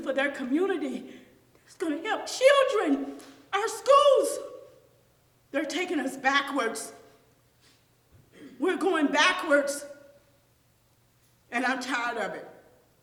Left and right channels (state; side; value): identical; both; correlation 1.00